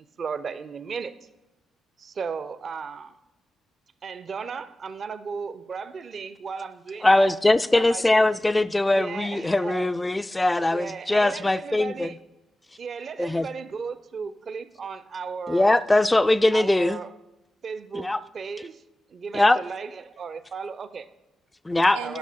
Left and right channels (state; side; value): normal; both; correlation 0.97